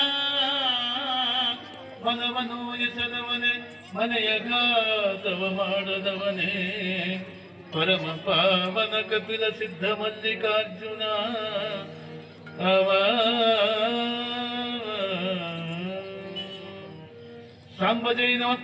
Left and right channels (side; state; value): both; identical; correlation 1.00